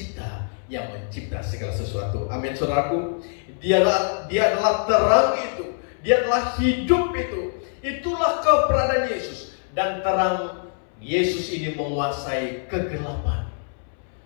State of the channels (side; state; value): right; silent; 63 dB below the other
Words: yang mencipta segala sesuatu. Amin, saudaraku. Dia adalah terang itu. Dia adalah hidup itu. Itulah keberadaan Yesus. Dan terang Yesus ini menguasai kegelapan.